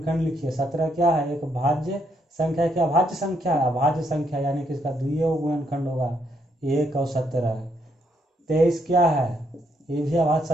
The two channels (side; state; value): both; normal; correlation 0.74